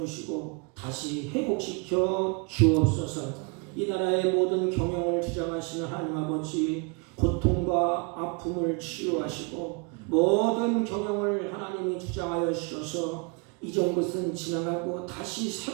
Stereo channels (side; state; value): left; quieter; 33.4 dB